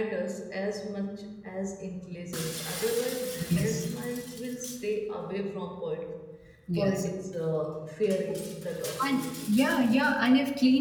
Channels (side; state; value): both; identical; correlation 1.00